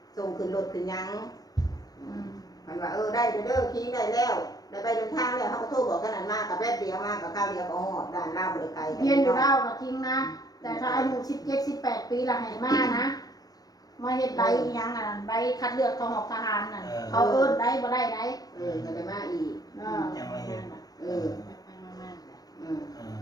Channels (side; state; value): right; late; 0.18 ms